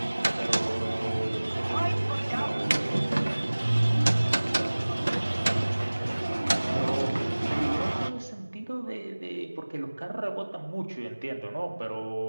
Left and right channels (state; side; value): inverted; both; correlation -1.00